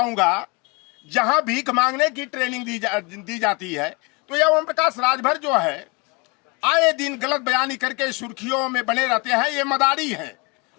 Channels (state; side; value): quieter; right; 28.8 dB